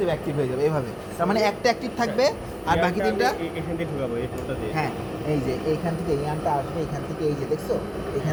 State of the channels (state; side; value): identical; both; correlation 1.00